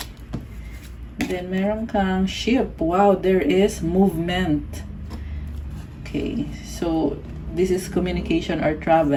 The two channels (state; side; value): identical; both; correlation 1.00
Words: Then, meron kang ship. Wow, there is movement. Okay. So, this is communication or